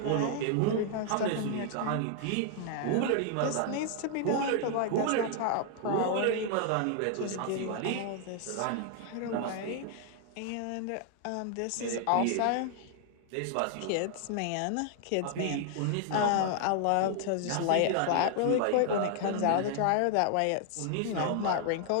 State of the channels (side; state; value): both; different; correlation 0.00